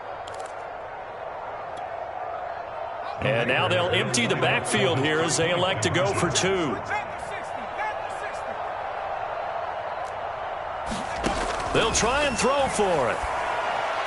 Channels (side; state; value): both; identical; correlation 1.00